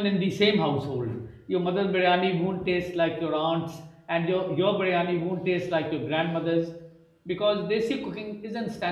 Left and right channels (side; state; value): both; identical; correlation 1.00